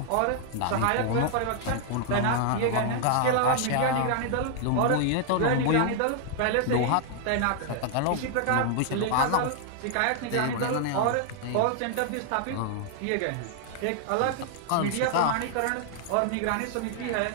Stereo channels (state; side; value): different; both; correlation 0.00